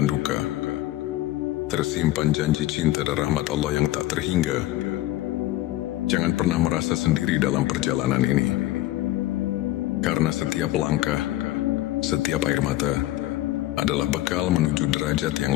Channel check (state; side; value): quieter; right; 15.7 dB